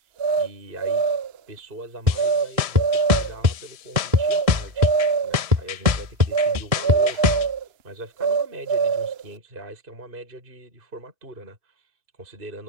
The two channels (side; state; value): left; late; 1.7 ms